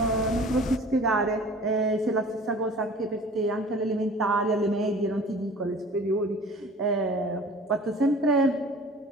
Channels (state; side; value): normal; both; correlation 0.45